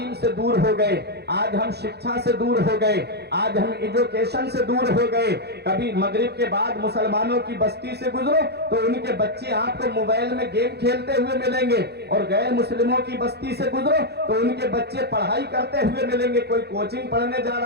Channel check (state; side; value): late; left; 0.48 ms